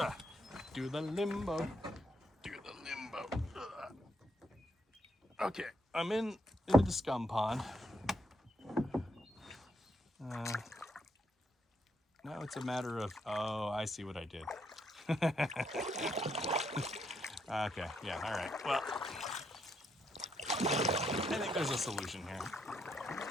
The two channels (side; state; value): both; normal; correlation 0.76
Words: Do the limbo. Ugh. Okay, I'm into the scum pond. Now it's a matter of, oh, I see what I did. Okay, yeah, all right. Well, I think there's a solution here.